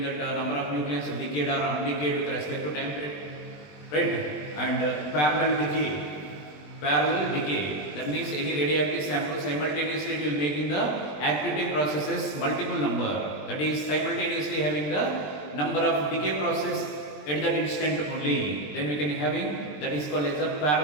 that number of nucleons decayed or undecayed with respect to time period, right? And parallel decay. Parallel decay, that means any radioactive sample simultaneously it will making the activity processes multiple number, that is simultaneously having the number of decay process at that instant only, then we can having that is called as a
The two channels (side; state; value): right; late; 20 ms